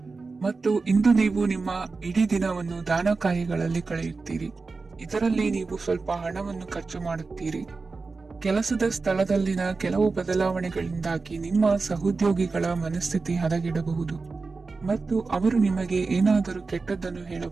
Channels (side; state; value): left; quieter; 4.1 dB